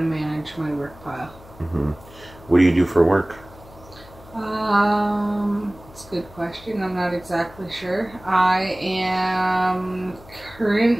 manage my work pile. Mm-hmm. What do you do for work? It's a good question. I'm not exactly sure. I am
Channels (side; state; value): left; noise; hum, 21 dB below the sound